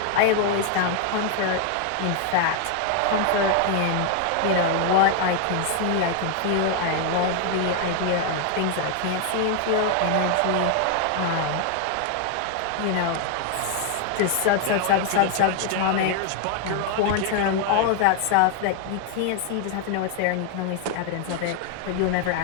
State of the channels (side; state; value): both; different; correlation 0.00